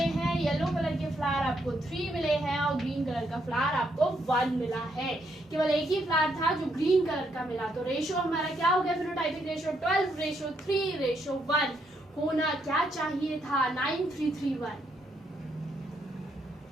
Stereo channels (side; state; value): both; normal; correlation 0.76